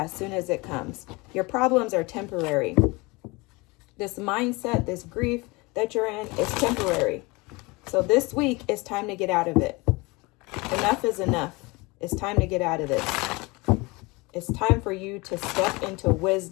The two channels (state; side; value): quieter; right; 24.9 dB